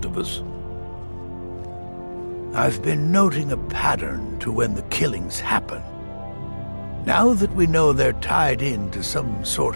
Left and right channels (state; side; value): inverted; both; correlation -1.00